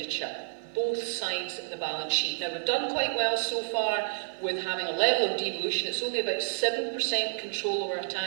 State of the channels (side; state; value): left; quieter; 33.1 dB